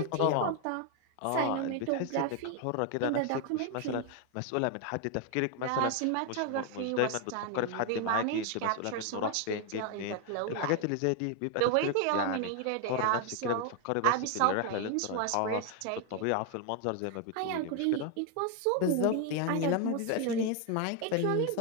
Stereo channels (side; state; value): both; different; correlation 0.01